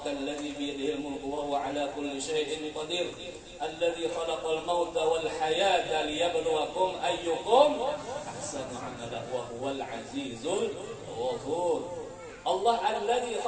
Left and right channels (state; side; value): identical; both; correlation 1.00